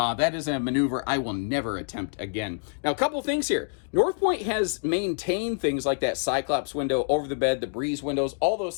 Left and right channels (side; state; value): right; silent; digital silence